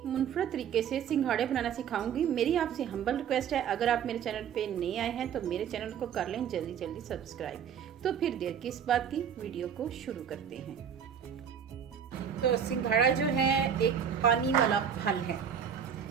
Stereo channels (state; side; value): quieter; left; 8.1 dB